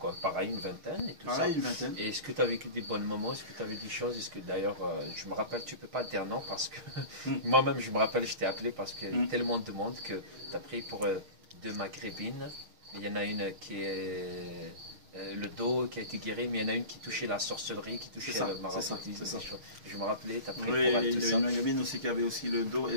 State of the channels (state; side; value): late; left; 6.4 ms